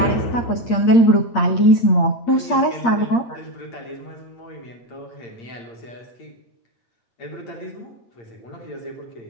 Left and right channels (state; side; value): late; right; 8.6 ms